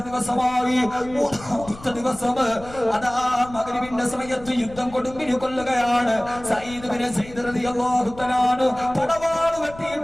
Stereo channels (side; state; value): left; noise; rumble, 18 dB below the sound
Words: ദിവസമായി 3-ാമത്തെ ദിവസം അതാ മഗ്രിബിന്റെ സമയത്ത് യുദ്ധം കൊടുമ്പിരി കൊല്ലുകയാണ് സയ്യിദ് റളിയല്ലാഹു തആല പടവാൾ